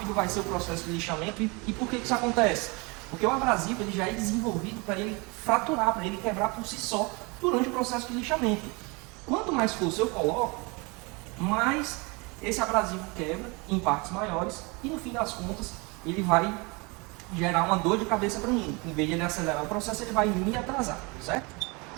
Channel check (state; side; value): quieter; left; 28.3 dB